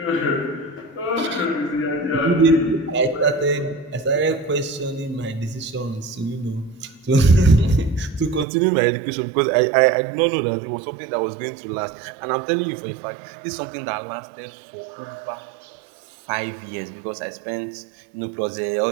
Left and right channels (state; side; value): drops out; left; at 8.5 s